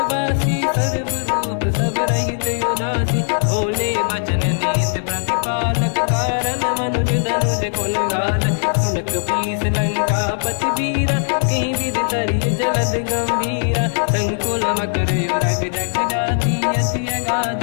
सर्व रूप सब रहित उदासी भोले बचन नीत प्रतिपालक कारण मनुज धनुज कुल घाल सुन कपीस लंका पति वीरा कहीं विधि तरिय जलद गंभीरा संकुल मकर युरग जख जाति अति अगाध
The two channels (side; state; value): right; silent; digital silence